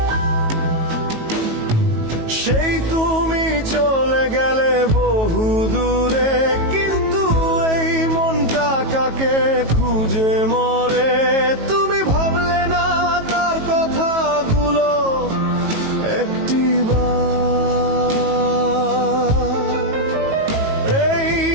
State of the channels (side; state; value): left; late; 18 ms